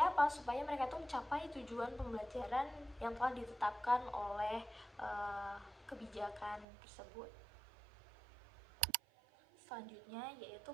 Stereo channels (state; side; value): drops out; left; at 6.7 s